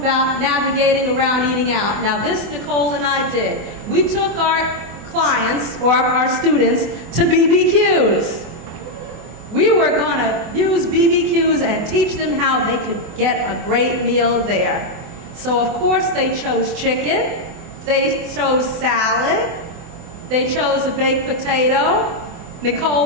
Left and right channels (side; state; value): left; late; 24 ms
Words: navigating around eating out. Now this Nicole and I did. We took our clients or our students to BBQs. We were going to use BBQs and teach them how they could get a great meal there. So of course they chose chicken, they chose salad, they chose a baked potato.